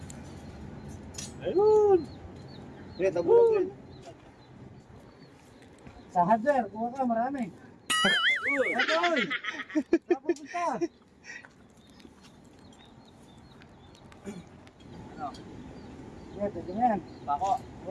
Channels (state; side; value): identical; both; correlation 1.00